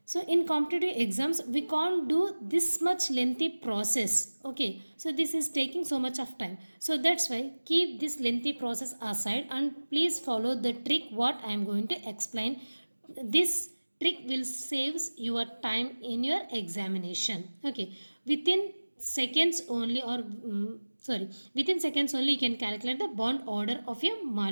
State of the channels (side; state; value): both; inverted; correlation -1.00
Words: so in competitive exams, we can't do this much lengthy process. Okay, so this is taking so much of time. So that's why keep this lengthy process aside and please follow the trick what I am going to explain. This trick will saves your time in your examination. Okay, within seconds only or sorry, within seconds only you can calculate the bond order of your